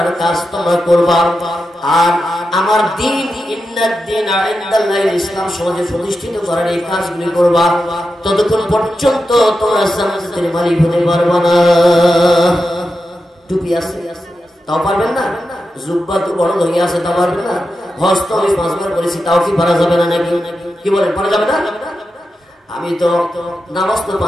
কাজ তোমরা করবা, আর আমার দ্বীন ইন্নাদ দীনা ইনদাল্লাহিল ইসলাম সমাজে প্রতিষ্ঠিত করার এই কাজগুলি করবা, ততক্ষণ পর্যন্ত তোমরা জান্নাতের মালিক হতে পারবে না। টুপি আছে তাও পারবেন না, জুব্বা তো বড় হয়ে আছে তাও পারবেন না, হজ তো আমি 5 বার করেছি তাও কি পারা যাবে না নাকি? কি বলেন, পারা যাবে না? আমি তো নামাজ তো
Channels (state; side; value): normal; both; correlation 0.89